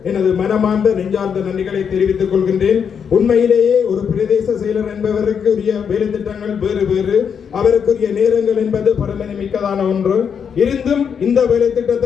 எனது மனமார்ந்த நெஞ்சார்ந்த நன்றிகளை தெரிவித்துக் கொள்கின்றேன். உண்மையிலேயே ஒரு பிரதேச செயலர் என்பவருக்கு உரிய வேலை திட்டங்கள் வேறு வேறு, அவருக்குரிய நேரங்கள் என்பது பரமனை மிக்கதான ஒன்று. இருந்தும் இந்த வேலை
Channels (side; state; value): right; quieter; 7.2 dB